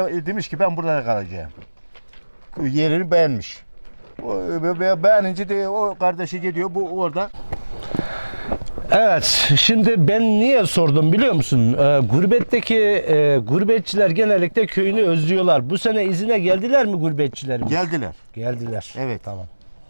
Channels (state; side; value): inverted; both; correlation -1.00